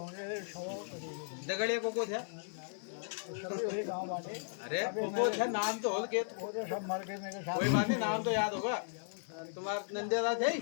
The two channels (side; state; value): right; silent; digital silence